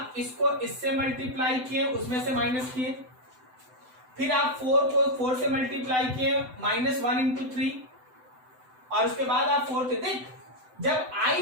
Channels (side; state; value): left; late; 7.9 ms